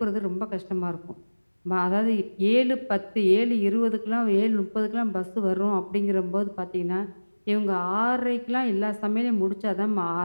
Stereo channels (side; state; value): both; inverted; correlation -1.00